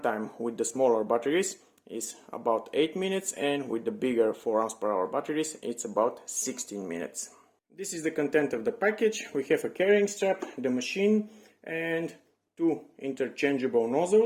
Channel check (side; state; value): both; identical; correlation 1.00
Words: with the smaller batteries is about 8 minutes and with the bigger 4 amps per hour batteries it's about 16 minutes. This is the content of the package. We have a carrying strap, the machine, and two interchangeable